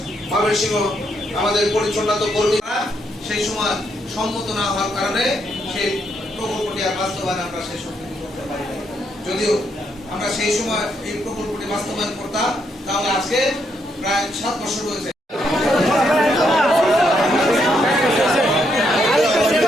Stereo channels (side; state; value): both; normal; correlation 0.76